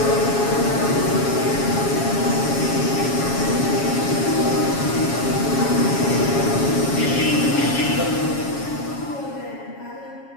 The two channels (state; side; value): late; right; 7.2 ms